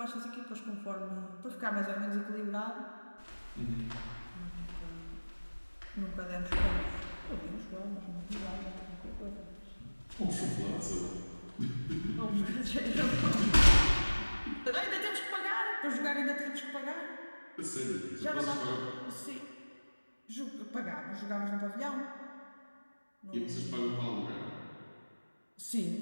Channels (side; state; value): both; inverted; correlation -1.00